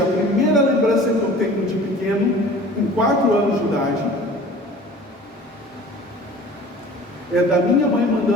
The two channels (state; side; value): normal; both; correlation 0.44